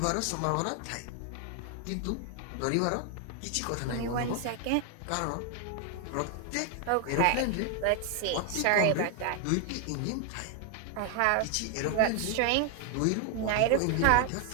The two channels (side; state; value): both; different; correlation 0.01